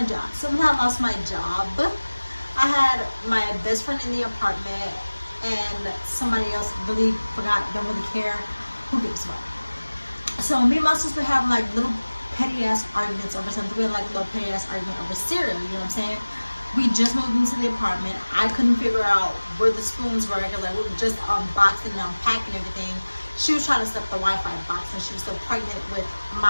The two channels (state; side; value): inverted; both; correlation -1.00